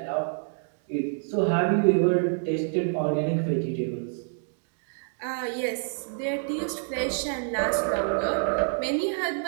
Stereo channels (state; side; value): silent; left; digital silence